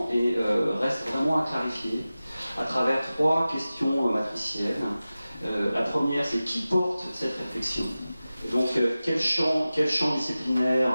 et reste vraiment à clarifier à travers 3 questions matricielles. La première, c'est qui porte cette réflexion. Donc quel champ disciplinaire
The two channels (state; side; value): inverted; both; correlation -0.96